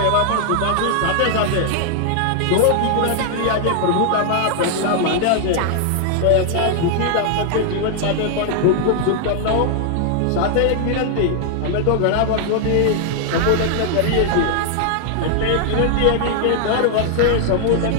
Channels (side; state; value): both; different; correlation -0.01